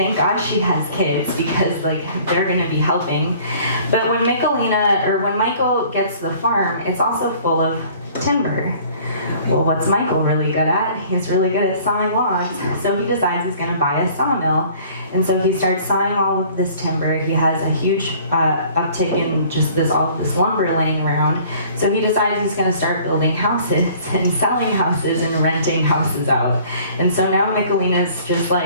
God she has kids, because like they're going to be helping. But when when Michael gets the farm, it's also full of timber. Well, what's Michael really good at? He's really good at sawing logs. So he decides he's going to buy a sawmill. And so he starts sawing all of this timber. He has a huge uptick in just all of this lumber laying around. So he decides he's going to start building houses and selling houses and renting houses out. And so now Michelina's just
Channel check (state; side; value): inverted; both; correlation -0.52